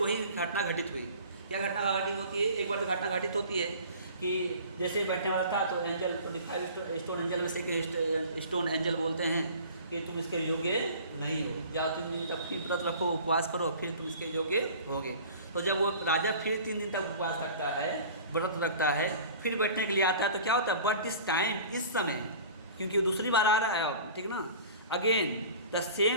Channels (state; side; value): inverted; both; correlation -0.43